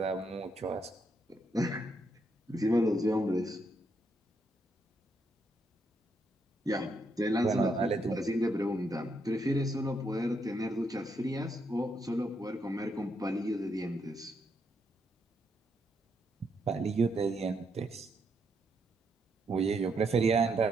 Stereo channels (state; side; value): normal; both; correlation 0.78